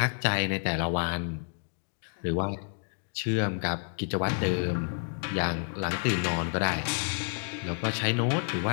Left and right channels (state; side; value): silent; right; digital silence